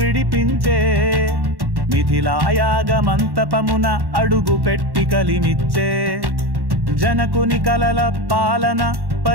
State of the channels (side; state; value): left; late; 1.1 ms